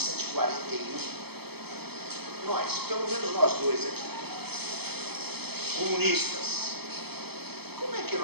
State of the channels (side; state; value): left; late; 0.97 ms